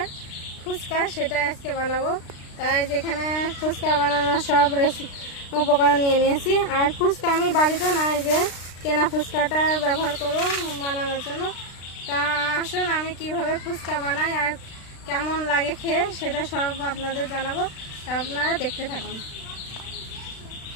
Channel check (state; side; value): late; right; 36 ms